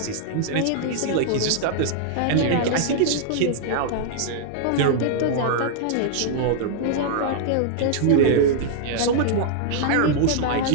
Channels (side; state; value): both; different; correlation -0.01